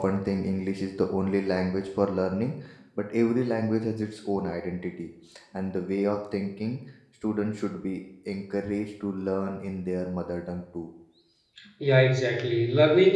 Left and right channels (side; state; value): both; identical; correlation 1.00